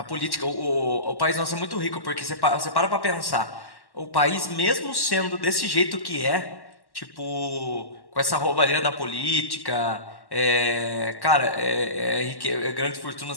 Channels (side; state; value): right; late; 1.1 ms